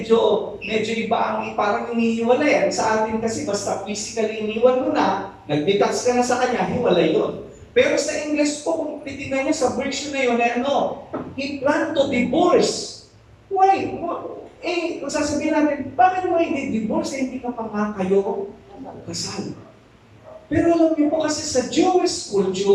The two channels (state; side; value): identical; both; correlation 1.00